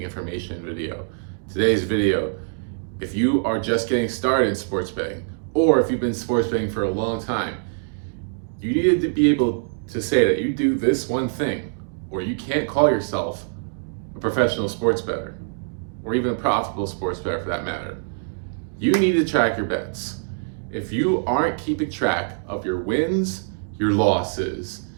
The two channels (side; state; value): left; silent; digital silence